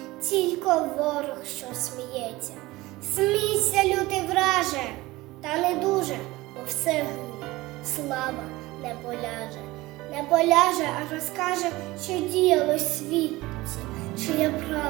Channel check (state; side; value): quieter; left; 19.7 dB